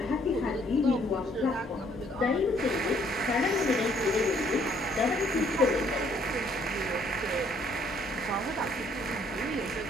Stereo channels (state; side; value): normal; both; correlation 0.65